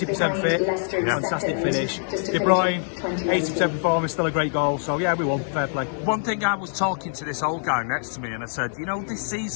fit, fantastic finish. De Bruyne, 80% performance, still a great goal. So yeah, we won, fair play. One thing, I was talking to this old guy next to me and I said, this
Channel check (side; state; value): right; silent; 62 dB below the other